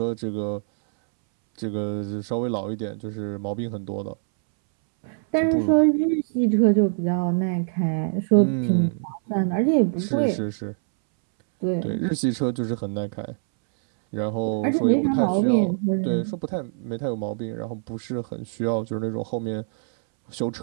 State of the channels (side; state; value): left; silent; 62 dB below the other